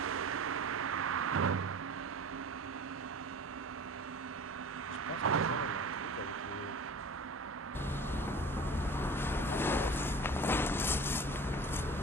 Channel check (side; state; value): both; normal; correlation 0.39